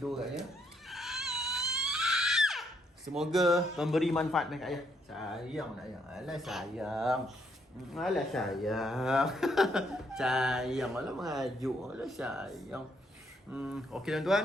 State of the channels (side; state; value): both; normal; correlation 0.73